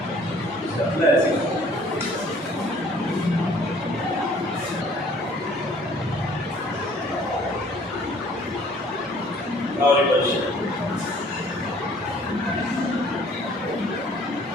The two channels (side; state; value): both; normal; correlation 0.56